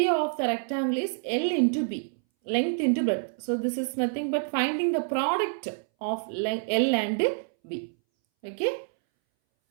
of the rectangle is L into B. Length into breadth. So this is nothing but finding the product of L and B. Okay.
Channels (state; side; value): silent; left; 60 dB below the other